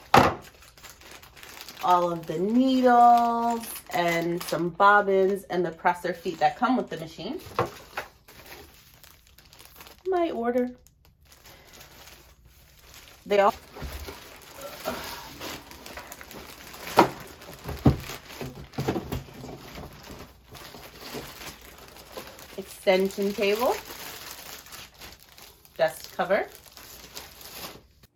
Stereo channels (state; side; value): identical; both; correlation 1.00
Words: All of the needles and some bobbins and the presser feet that come with the machine. My order. They all extension table, dust cover,